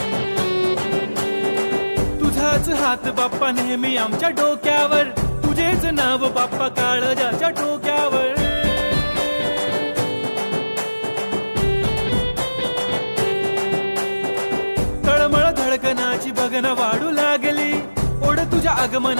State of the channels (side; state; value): both; inverted; correlation -1.00